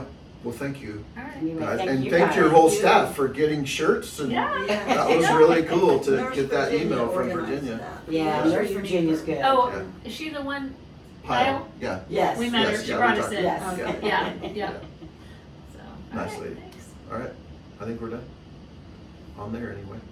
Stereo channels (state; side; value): identical; both; correlation 1.00